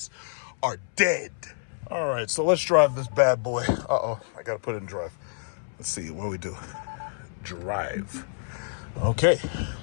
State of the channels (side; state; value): right; silent; 60 dB below the other